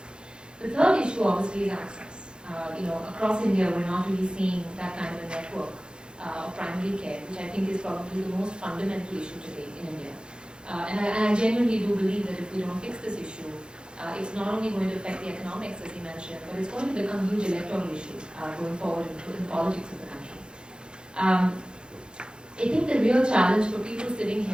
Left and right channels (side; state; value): left; late; 0.049 ms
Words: The third issue obviously is access. Across India we're not really seeing that kind of a network of primary care, which I think is probably the most fundamental issue today in India. And I genuinely do believe that if we don't fix this issue, it's not only going to affect the economics, as he mentioned, but it's going to become a huge electoral issue going forward in politics of the country. I think the real challenge for people sitting